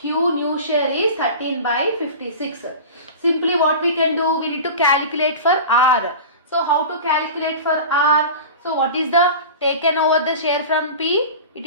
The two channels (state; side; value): inverted; both; correlation -0.33